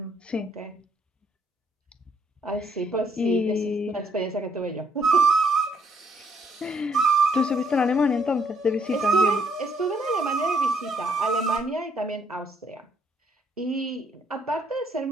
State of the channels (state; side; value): normal; both; correlation 0.69